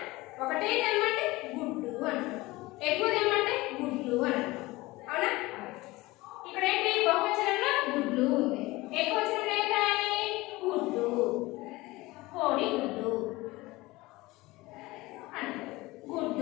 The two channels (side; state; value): right; quieter; 20.5 dB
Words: ఒకటే తెమ్మంటే గుడ్డు అంటారు, ఎక్కువ తెమ్మంటే గుడ్లు అని అంటారు. అవునా? ఇక్కడ ఏంటి? బహువచనంలో గుడ్లు ఉంది, ఏకవచనంలో ఏం రాయాలి? గుడ్డు. కోడి గుడ్డు